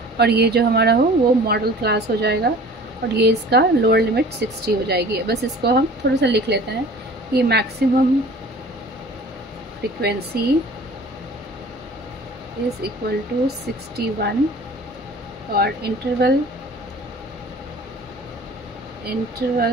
और ये जो हमारा हो वो मॉडल क्लास हो जाएगा, और ये इसका लोअर लिमिट 60 हो जाएगी। बस इसको हम थोड़ा सा लिख लेते हैं, ये maximum frequency is equal to 61, और इंटरवल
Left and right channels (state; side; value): normal; both; correlation 0.45